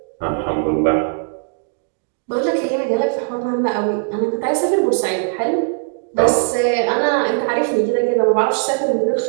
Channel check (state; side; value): silent; left; digital silence